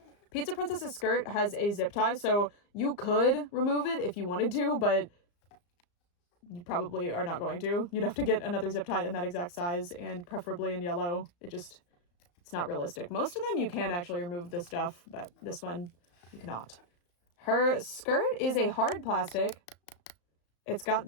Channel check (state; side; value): late; right; 34 ms